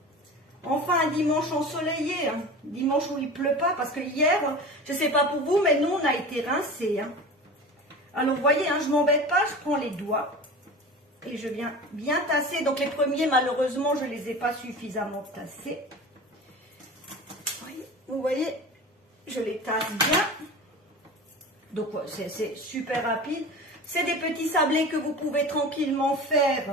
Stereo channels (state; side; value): normal; both; correlation 0.34